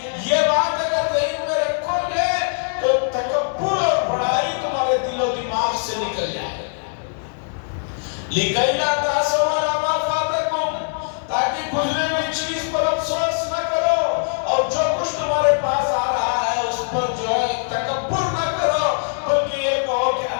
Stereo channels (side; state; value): right; silent; digital silence